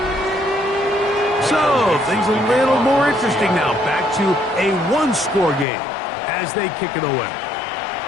So, things a little more interesting now. Back to a one-score game as they kick it away.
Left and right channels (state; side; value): drops out; right; at 5.7 s